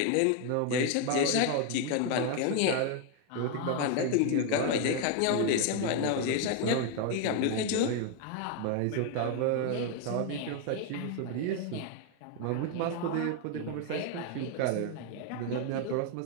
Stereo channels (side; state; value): both; different; correlation 0.01